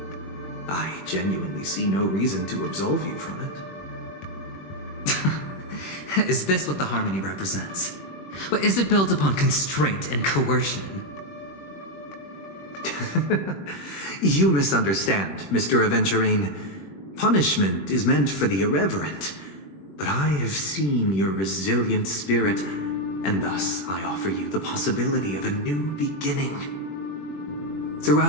I genuinely see no reason to absolve you from it. Is this what the Harmony represents? But is it built upon constraint and coercion? You misunderstand, Mr. Aventurine. Punishment is meant for the irreverent, but I have seen your resilient spirit, and thus I offer you the possibility of a new beginning.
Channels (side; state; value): right; late; 21 ms